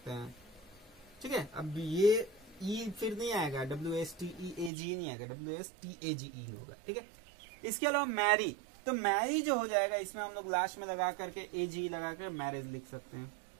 हैं। ठीक है, अब ये ई फिर नहीं आएगा, WSTEAG नहीं आएगा, WSTAGE होगा। ठीक है, इसके अलावा मैरी, तो मैरी जो हो जाएगा इसमें हम लोग लास्ट में लगा करके AG लगा कर मैरिज लिख सकते हैं।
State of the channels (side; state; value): left; drops out; at 4.7 s